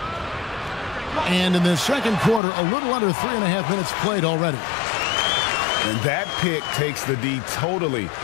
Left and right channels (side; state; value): right; drops out; at 2.4 s